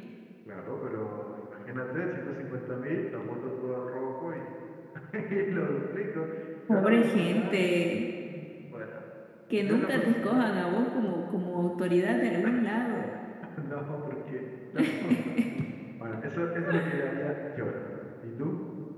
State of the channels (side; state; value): both; identical; correlation 1.00